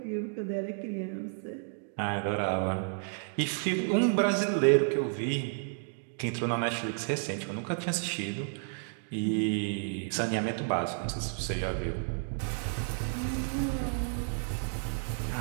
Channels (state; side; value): silent; left; 57 dB below the other